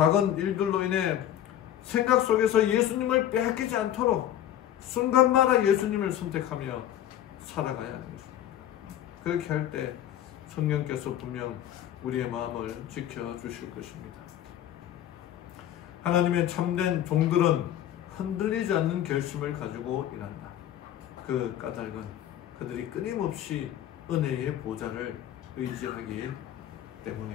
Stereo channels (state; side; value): quieter; right; 11.5 dB